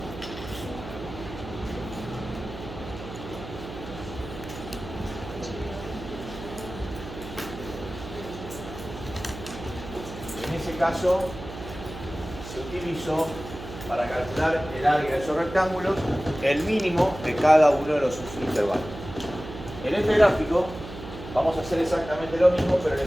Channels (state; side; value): noise; right; hum, 12 dB below the sound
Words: En ese caso se utilizó para calcular el área de esos rectángulos el mínimo de cada uno de los subintervalos. En este gráfico vamos a hacer exactamente lo mismo, pero el